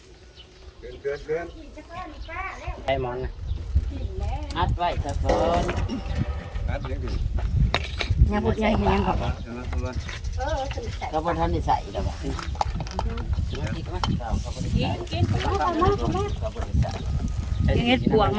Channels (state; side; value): identical; both; correlation 1.00